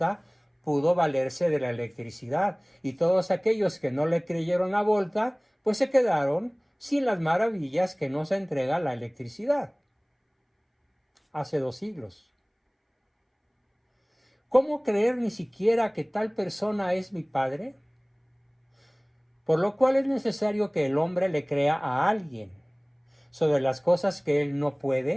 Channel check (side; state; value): both; identical; correlation 1.00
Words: pudo valerse de la electricidad, y todos aquellos que no le creyeron a Volta, pues se quedaron sin las maravillas que nos entrega la electricidad. Hace 2 siglos. ¿Cómo creer ni siquiera que tal persona es mi padre? Por lo cual es necesario que el hombre le crea a alguien sobre las cosas que él no